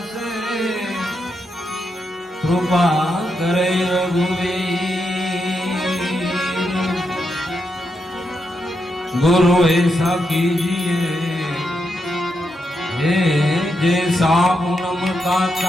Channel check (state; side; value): normal; both; correlation 0.84